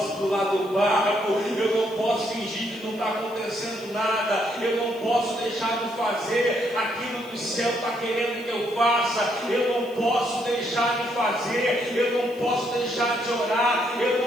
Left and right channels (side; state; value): left; noise; hiss, 24 dB below the sound